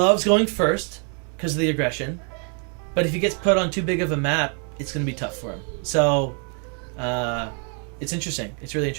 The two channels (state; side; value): quieter; left; 39.7 dB